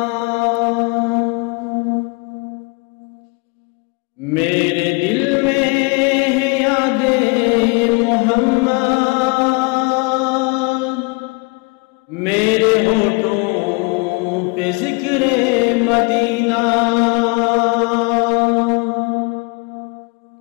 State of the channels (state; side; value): quieter; right; 29.4 dB